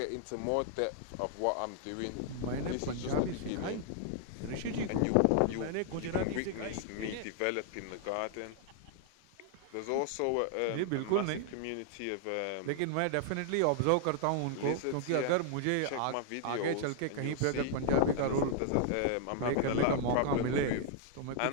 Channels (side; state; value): both; different; correlation 0.00